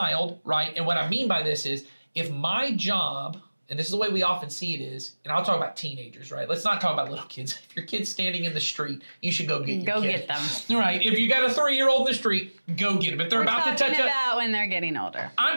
right, and what I mean by this is, if my job, and this is the way we often see it is, and I'll talk about teenagers, right? Let's not talk about little kids. If your kid's standing in the street, you should go get your kid. Get them. Right. If you got a 3-year-old in the street, go get them. If they're about to touch up. About when they're getting older.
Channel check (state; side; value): inverted; both; correlation -1.00